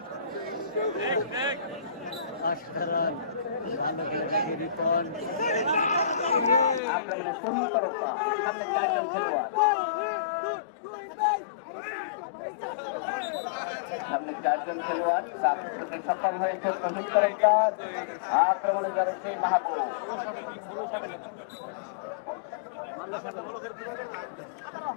আক্রমণে তুহিন তরফদার। সামনে 4 জন খেলোয়াড়। সামনে 4 জন খেলোয়াড়। তার সাথে সক্ষম হয়েছে তুহিন তরফদার। আক্রমণে জড়েছে মাহবুব।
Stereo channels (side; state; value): right; drops out; at 6.8 s